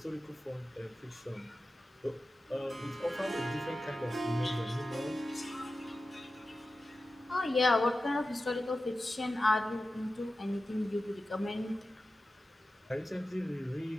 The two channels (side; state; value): both; normal; correlation 0.93